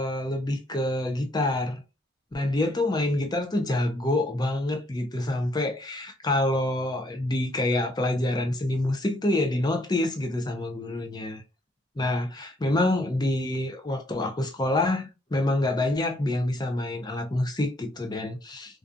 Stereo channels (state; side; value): normal; both; correlation 0.69